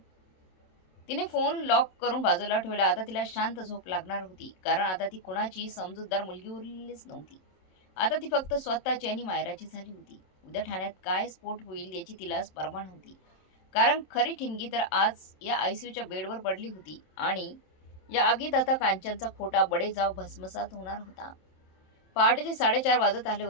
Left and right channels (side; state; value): right; late; 27 ms